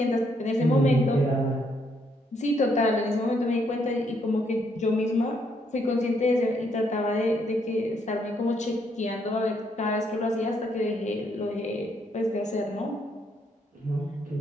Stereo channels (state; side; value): normal; both; correlation 0.73